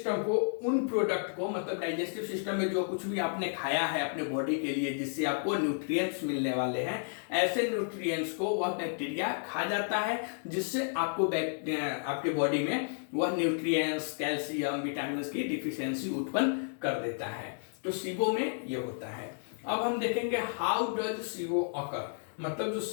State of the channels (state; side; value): silent; right; digital silence